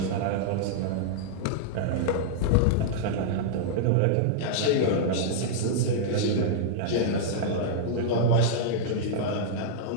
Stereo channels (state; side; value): different; both; correlation -0.02